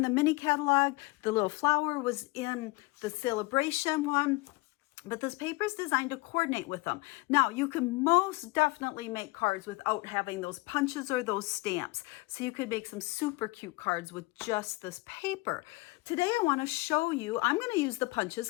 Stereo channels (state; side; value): quieter; right; 23.2 dB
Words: the mini catalog. The little flower was in the celebration one. But this paper is designed to coordinate with them. Now, you can most definitely make cards without having those punches or those stamps. So you could make some super cute cards with just this paper. Today, I want to show you, I'm going to use the punches